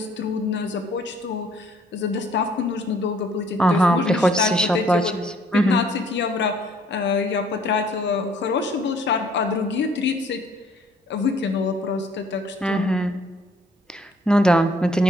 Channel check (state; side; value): normal; both; correlation 0.60